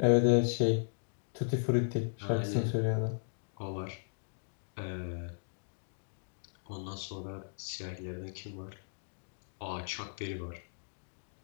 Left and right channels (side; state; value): right; silent; digital silence